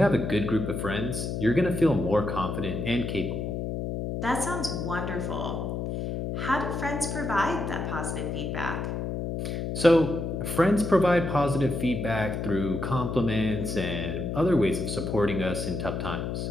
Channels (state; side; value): noise; left; hum, 3 dB below the sound